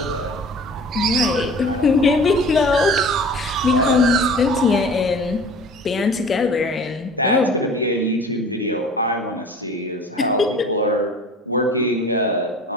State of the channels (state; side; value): normal; both; correlation 0.43